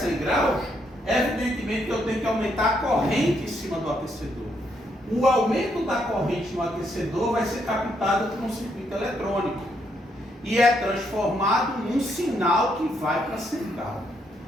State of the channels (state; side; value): normal; both; correlation 0.75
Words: graus, evidentemente que eu tenho que aumentar a corrente em cima do aquecedor. O aumento da corrente no aquecedor vai ser captado por um circuito eletrônico e é transformado num sinal que vai para a central.